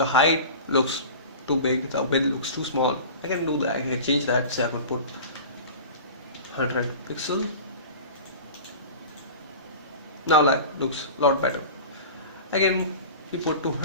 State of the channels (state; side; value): inverted; both; correlation -0.36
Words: height looks too big, the width looks too small. I can do that. I can change that. Say I can put 100 pixel. Now that looks a lot better. I can put